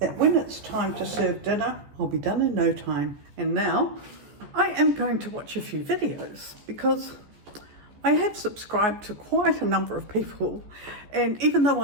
that when it's time to serve dinner, I'll be done in no time. And now I am going to watch a few videos because I have subscribed to quite a number of people, and even though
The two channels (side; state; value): left; late; 14 ms